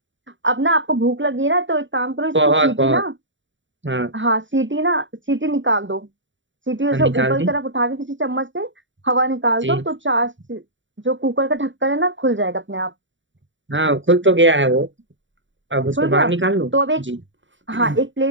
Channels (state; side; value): late; left; 0.55 ms